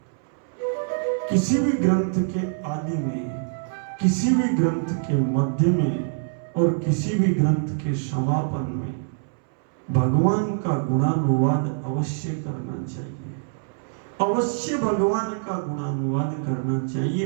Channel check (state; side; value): silent; left; 62 dB below the other